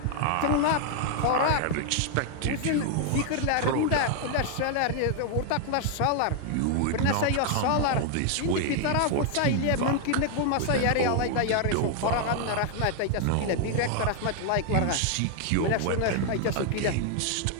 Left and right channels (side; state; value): both; different; correlation 0.00